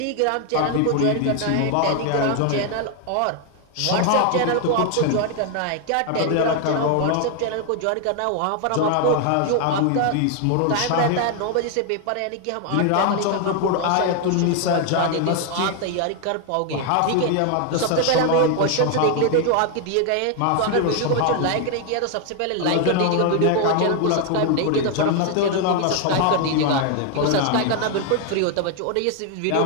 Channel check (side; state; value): both; different; correlation 0.00